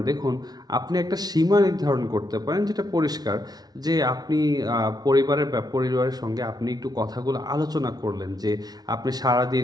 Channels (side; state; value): left; late; 0.19 ms